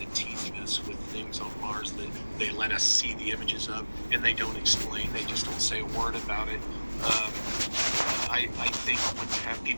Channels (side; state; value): both; inverted; correlation -1.00